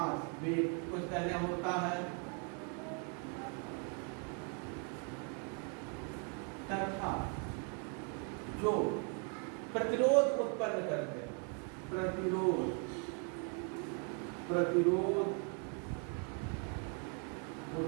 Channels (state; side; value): quieter; left; 39.5 dB